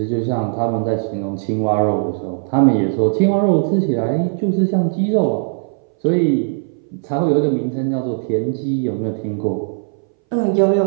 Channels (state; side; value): silent; left; 62 dB below the other